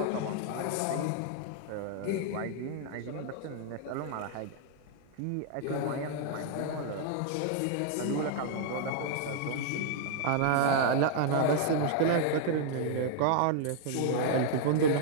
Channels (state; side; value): different; both; correlation -0.01